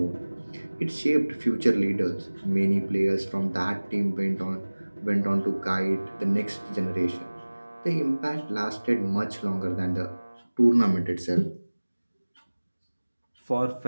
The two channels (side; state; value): both; inverted; correlation -1.00